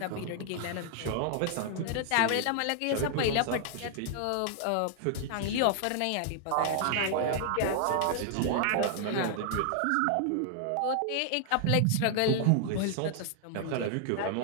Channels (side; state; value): both; different; correlation 0.00